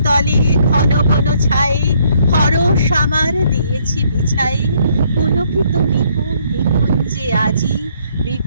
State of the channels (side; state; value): both; inverted; correlation -0.68